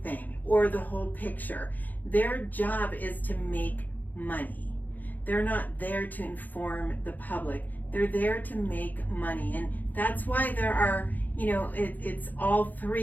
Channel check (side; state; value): right; late; 0.084 ms